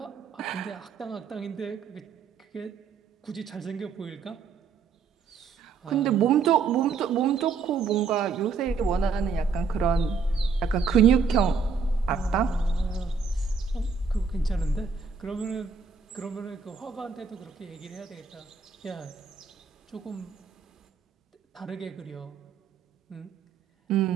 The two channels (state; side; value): quieter; left; 5.3 dB